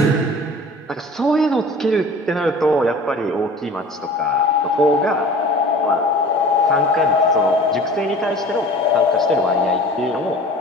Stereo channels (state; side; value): normal; both; correlation 0.43